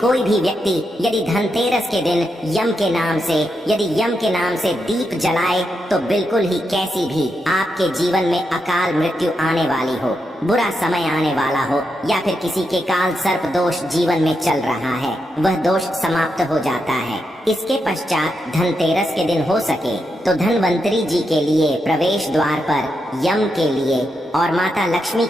भी व्यक्ति यदि धनतेरस के दिन यम के नाम से दीप जलाए तो बिल्कुल ही कैसी भी आपके जीवन में अकाल मृत्यु आने वाली हो, बुरा समय आने वाला हो या फिर किसी के काल सर्प दोष जीवन में चल रहा है, वह दोष समाप्त हो जाता है। इसके पश्चात धनतेरस के दिन हो सके तो धनवंतरी जी के लिए प्रवेश द्वार पर यम के लिए और माता लक्ष्मी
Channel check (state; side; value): normal; both; correlation 0.84